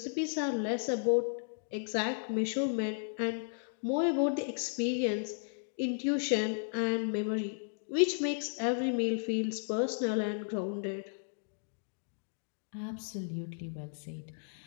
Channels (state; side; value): silent; right; digital silence